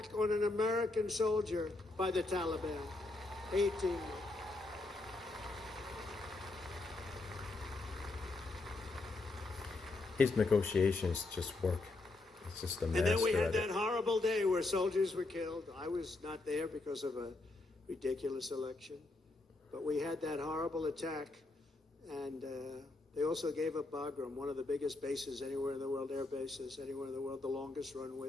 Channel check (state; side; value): quieter; right; 3.1 dB